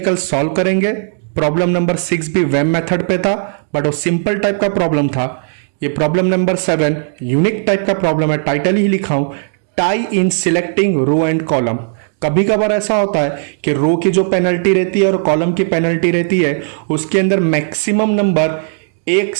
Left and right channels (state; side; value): silent; left; 69 dB below the other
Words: सॉल्व करेंगे। प्रॉब्लम नंबर 6 भी वेब मेथड पे था, बट वो सिंपल टाइप का प्रॉब्लम था। ये प्रॉब्लम नंबर 7 यूनिक टाइप का प्रॉब्लम है। टाइटल ही लिखा हूं, tie in selecting row and column. कभी कभार ऐसा होता है कि रो की जो पेनल्टी रहती है और कॉलम की पेनल्टी रहती है, उसके अंदर मैक्सिमम नंबर एक